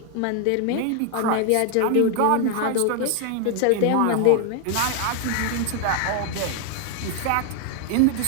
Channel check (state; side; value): different; both; correlation 0.00